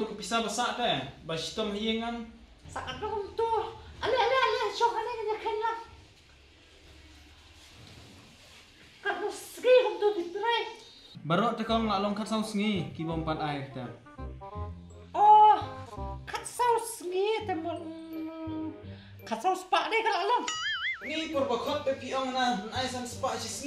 kepisa basak teh. Basitom hiyengan. Saan naman to? Ali. Siya ka na ganyan lang. Kano sige kung to ditry. Barok teh Kong lalong kat saus ngi kibom pan air teh. Oh, temen kasau sepak deh kalau long. Ni perbakot pe piong na ai san spa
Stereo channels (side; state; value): both; identical; correlation 1.00